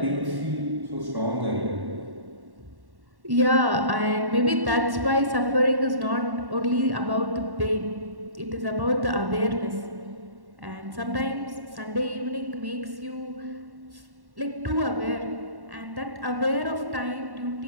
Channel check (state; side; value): late; left; 1.1 ms